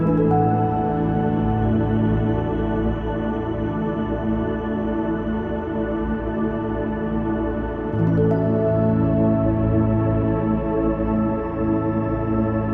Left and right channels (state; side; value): identical; both; correlation 1.00